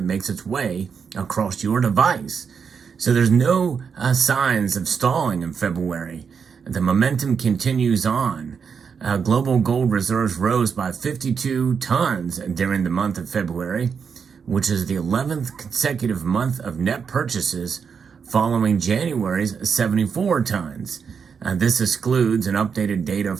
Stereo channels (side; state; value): left; quieter; 6.3 dB